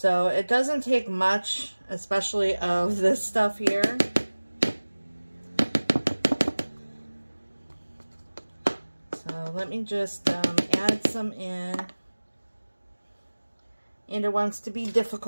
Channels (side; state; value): both; inverted; correlation -1.00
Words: it doesn't take much, especially of this stuff here. So let me just add some in. And it wants to be